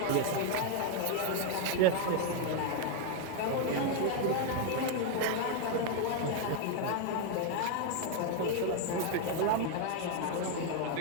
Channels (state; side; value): different; both; correlation 0.01